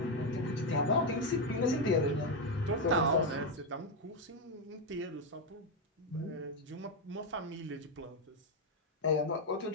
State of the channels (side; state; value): both; normal; correlation 0.05